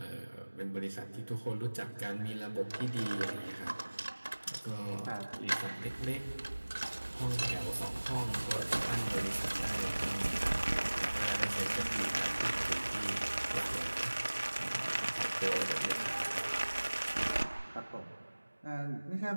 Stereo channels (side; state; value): both; inverted; correlation -1.00